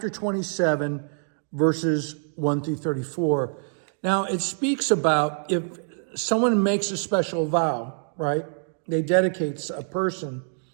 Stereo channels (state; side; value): silent; left; digital silence